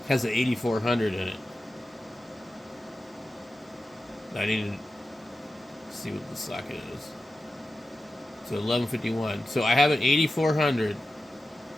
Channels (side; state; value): both; normal; correlation 0.93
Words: has an 8400 in it. I need to see what the socket is. So 1151. So I have an 8400.